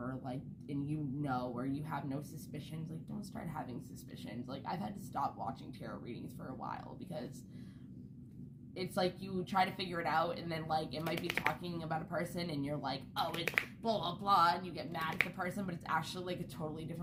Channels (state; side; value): identical; both; correlation 1.00